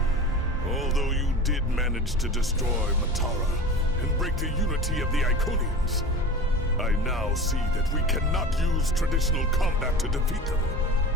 Although you did manage to destroy Matara and break the unity of the Iconians, I now see that we cannot use traditional combat to defeat them.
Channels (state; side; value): normal; both; correlation 0.34